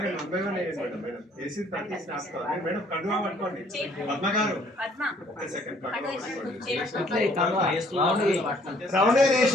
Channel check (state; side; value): normal; both; correlation 0.61